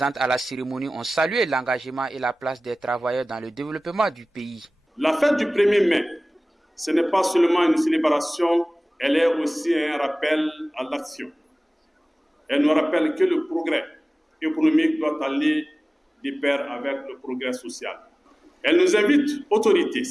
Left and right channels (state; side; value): normal; both; correlation 0.98